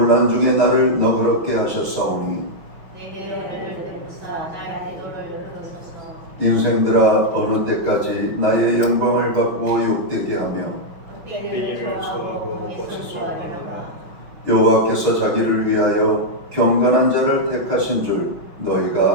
중에 나를 너그럽게 하셨사오니 인생들아, 어느 때까지 나의 영광을 받고 욕되게 하며 때기를 소하고 고치소하노라. 여호와께서 자기를 위하여 경건한 자를 택하신 줄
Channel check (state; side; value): late; left; 5.9 ms